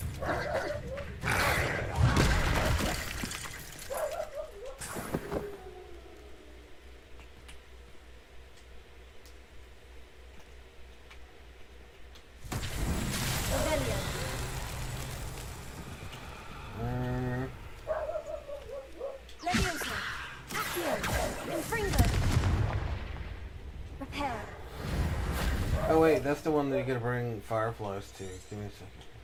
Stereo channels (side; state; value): both; identical; correlation 1.00